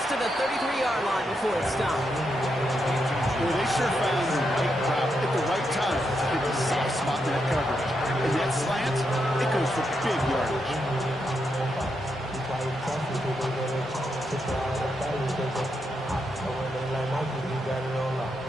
to the 33-yard line before it's stopped. Well, they sure found the right route at the right time to hit the soft spot in that coverage. And that slant, it goes for big yardage.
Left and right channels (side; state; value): both; normal; correlation 0.82